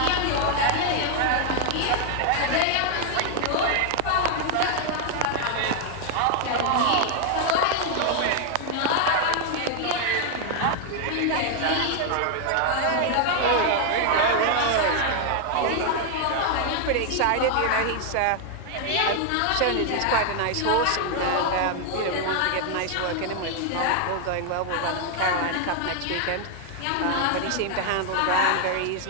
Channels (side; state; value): both; different; correlation 0.00